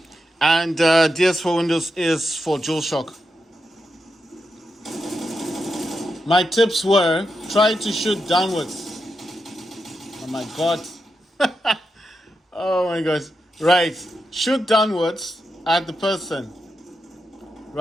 and DS for Windows is for DualShock. My tips were try to shoot downwards. Oh my god. Oh my gosh. Right. Shoot downwards at the person.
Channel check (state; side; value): normal; both; correlation 0.86